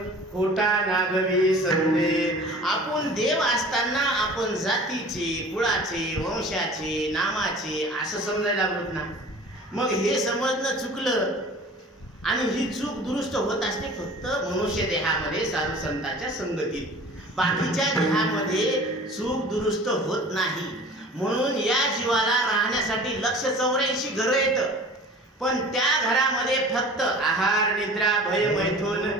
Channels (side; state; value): both; normal; correlation 0.43